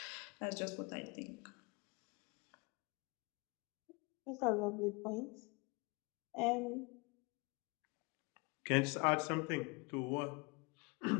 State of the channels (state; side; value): quieter; right; 28.5 dB